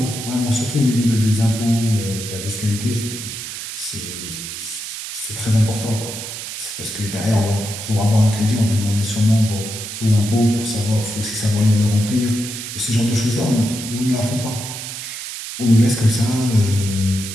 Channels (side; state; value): right; noise; hiss, 8 dB below the sound